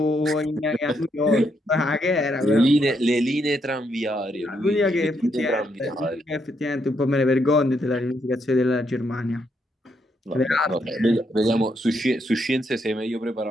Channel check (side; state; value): both; normal; correlation 0.77